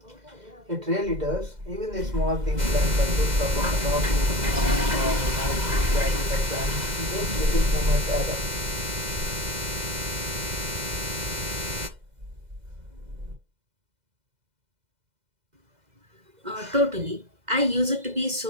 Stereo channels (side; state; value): left; late; 2.0 ms